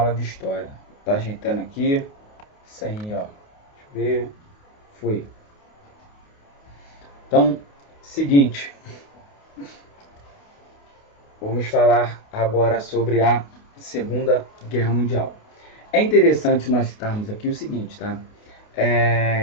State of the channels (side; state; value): right; late; 28 ms